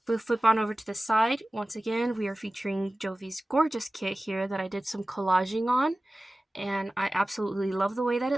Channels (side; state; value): both; normal; correlation 0.96